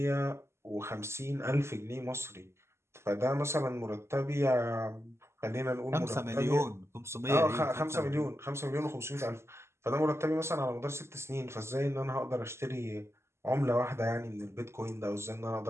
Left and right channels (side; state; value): left; late; 0.13 ms